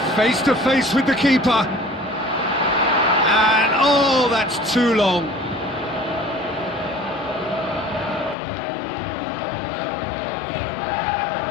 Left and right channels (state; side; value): drops out; right; at 8.3 s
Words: Face to face with the keeper. And oh, that's too long.